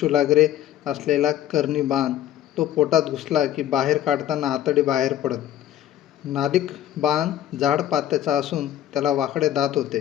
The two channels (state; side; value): quieter; right; 11.9 dB